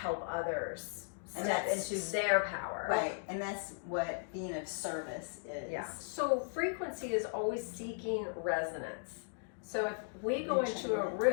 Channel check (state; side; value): silent; right; digital silence